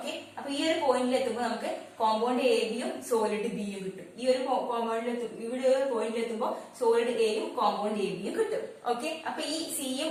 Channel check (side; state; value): both; identical; correlation 1.00